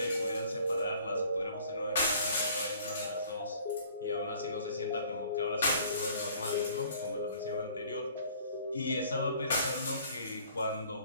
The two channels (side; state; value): both; inverted; correlation -0.54